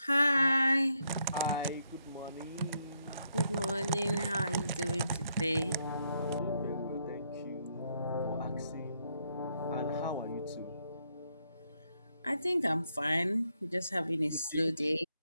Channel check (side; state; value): both; inverted; correlation -0.76